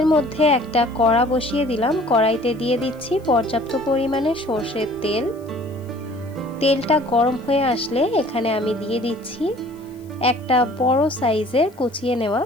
মধ্যে একটা কড়া বসিয়ে দিলাম। কড়াইতে দিয়ে দিচ্ছি পর্যাপ্ত পরিমাণে সরষের তেল। তেলটা গরম হয়ে আসলে এখানে আমি দিয়ে দিচ্ছি একটা বড় সাইজের কুচিয়ে নেওয়া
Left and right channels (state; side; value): noise; left; hiss, 30 dB below the sound